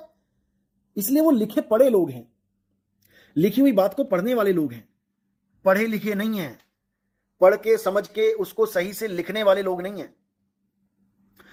इसलिए वो लिखे पढ़े लोग हैं, लिखी हुई बात को पढ़ने वाले लोग हैं, पढ़े लिखे नहीं है, पढ़ के समझ के उसको सही से लिखने वाले लोग नहीं है।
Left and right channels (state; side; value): identical; both; correlation 1.00